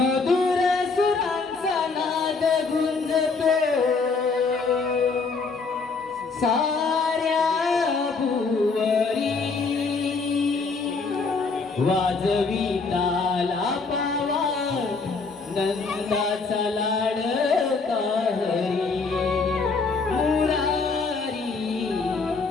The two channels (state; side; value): quieter; right; 4.4 dB